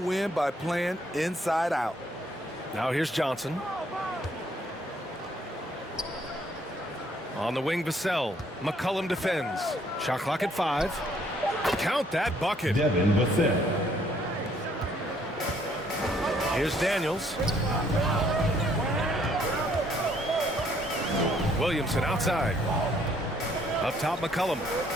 by playing inside out. Now here's Johnson. On the wing, Vassell. McCollum defends. Shot clock at 5. Count that bucket. Devin Vassell. Here's Daniels. Williamson outside. Up top, McCollum.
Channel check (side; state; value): both; normal; correlation 0.65